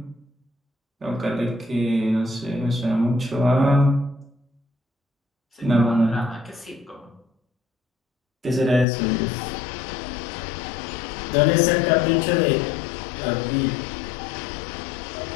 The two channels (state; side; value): drops out; right; at 8.8 s